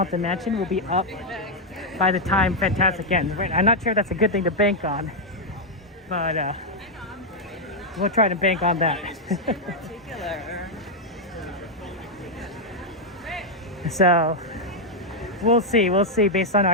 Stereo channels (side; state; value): both; normal; correlation -0.01